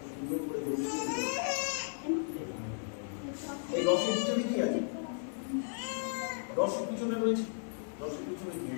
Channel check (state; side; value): silent; right; digital silence